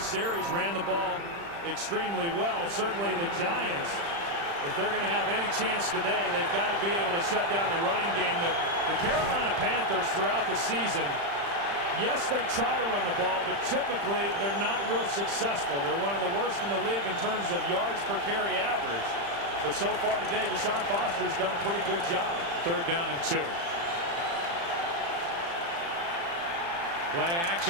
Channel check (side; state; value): left; late; 35 ms